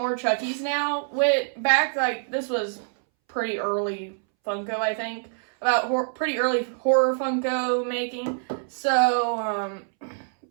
Chuckies now. This was pretty early Funko, I think. Pretty early horror Funko making. So,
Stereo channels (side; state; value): left; silent; 61 dB below the other